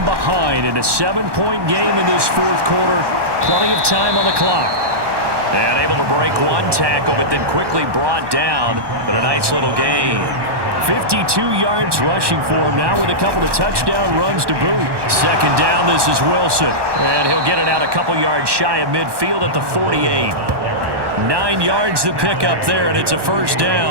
behind in a 7-point game in this fourth quarter. Plenty of time on the clock. And able to break one tackle, but then quickly brought down. But a nice little gain. 52 yards rushing for him now with a couple of touchdown runs to boot. Second down, this is Wilson. And he'll get it out a couple yards shy of midfield at the 48. 9 yards to pick up there, and it's a first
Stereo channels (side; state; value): left; late; 1.2 ms